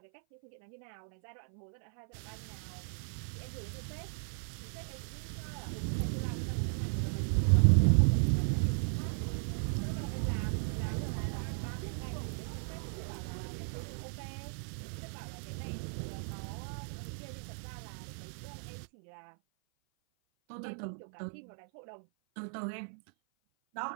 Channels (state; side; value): silent; left; 54 dB below the other